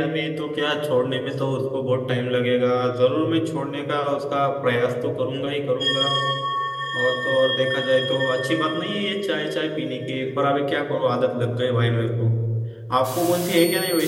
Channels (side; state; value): both; identical; correlation 1.00